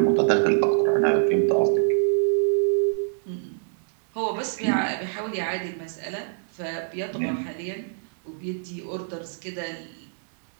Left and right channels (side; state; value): left; silent; digital silence